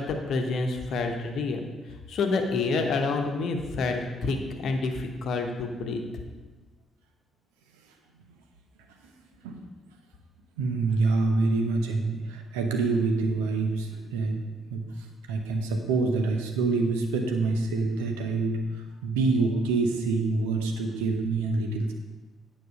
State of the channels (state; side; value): normal; both; correlation 0.67